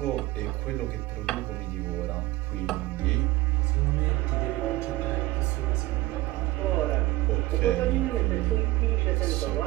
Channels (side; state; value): left; quieter; 18.6 dB